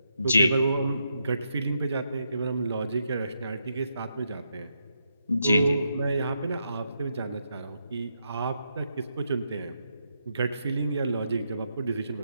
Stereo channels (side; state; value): both; inverted; correlation -0.81